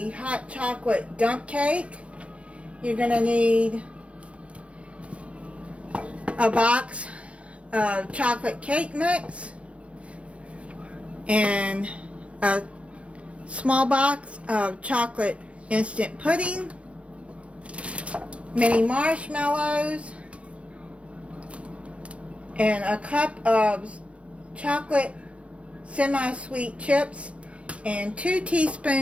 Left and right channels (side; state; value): left; late; 0.062 ms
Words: hot chocolate dump cake. You're going to need a box of chocolate cake mix and a small box of chocolate instant pudding, mini marshmallows, and a cup of chocolate semi-sweet chips, and 2